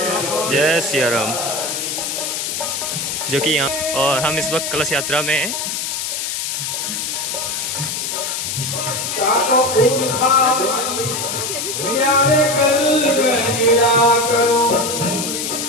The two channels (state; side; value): noise; left; hiss, 3 dB below the sound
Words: जय सिया राम। जो कि यहाँ, और हम इस वक्त कलश यात्रा में हैं।